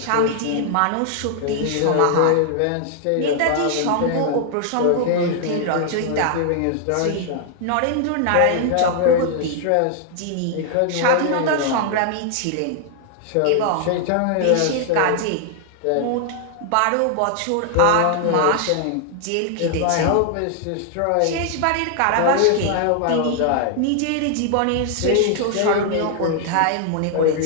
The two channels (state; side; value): different; both; correlation 0.00